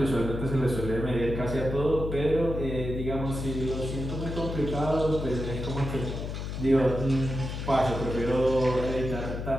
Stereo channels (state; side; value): noise; left; hum, 5 dB below the sound